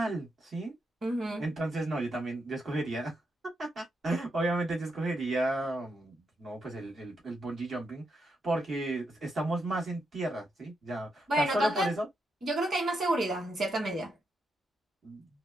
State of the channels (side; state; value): both; normal; correlation 0.82